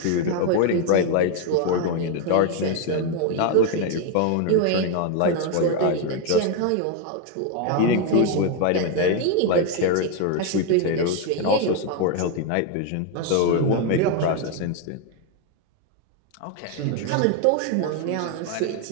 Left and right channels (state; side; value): different; both; correlation 0.01